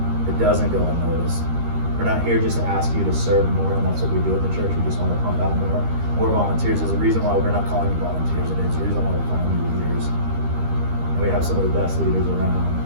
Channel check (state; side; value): late; left; 13 ms